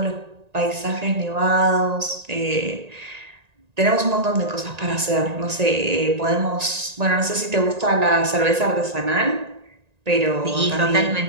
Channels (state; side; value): late; left; 1.9 ms